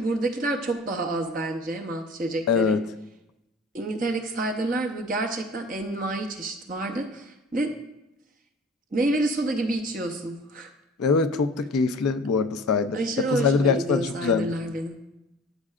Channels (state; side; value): normal; both; correlation 0.44